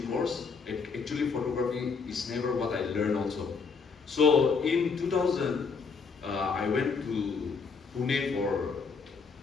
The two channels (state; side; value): quieter; right; 5.2 dB